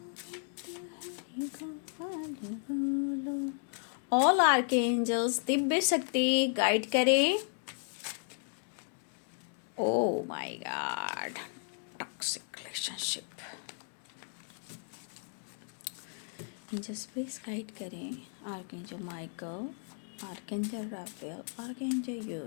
ऑल आर्कएंजल्स दिव्य शक्ति गाइड करें। Oh my God, toxic relationship, angels please guide करें। Archangel Michael, archangel Raphael, archangel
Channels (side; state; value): right; silent; 55 dB below the other